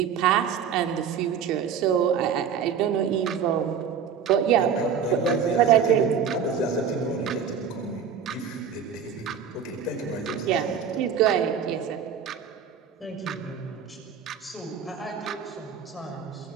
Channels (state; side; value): quieter; left; 7.3 dB